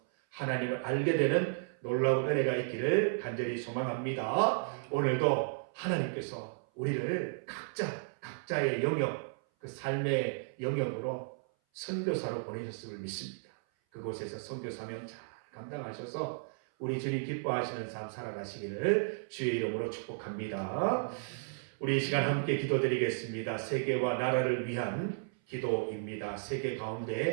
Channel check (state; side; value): silent; left; 55 dB below the other